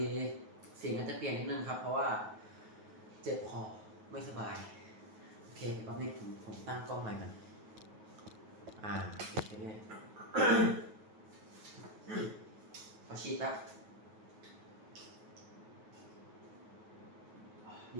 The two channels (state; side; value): late; left; 9.3 ms